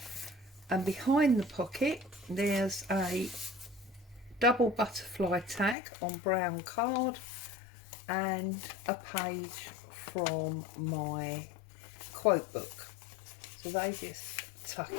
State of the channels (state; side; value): drops out; right; at 5.8 s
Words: And behind the pocket, there's a double butterfly tag on brown card and a page from my quote book. So they just tuck